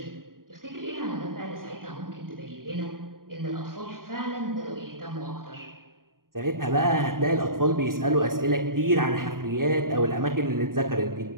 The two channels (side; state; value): left; late; 0.91 ms